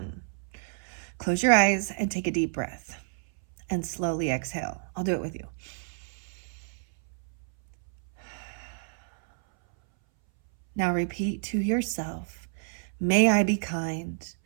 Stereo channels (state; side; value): silent; left; 59 dB below the other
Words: close your eyes and take a deep breath and slowly exhale. I'll do it with you. Now repeat to yourself, may I be kind,